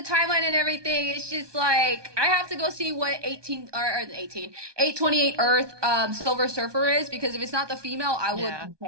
and everything, it's just like I have to go see what 828 Earth Silver Surfer is, because if it's not the female, I would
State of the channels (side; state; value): left; late; 1.2 ms